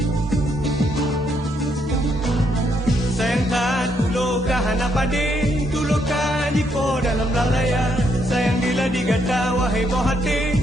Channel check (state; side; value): normal; both; correlation 0.75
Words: Sayang tak tulo kahana padi tulo kaji po dalam lalaya. Sayang bila digata wahai boh hati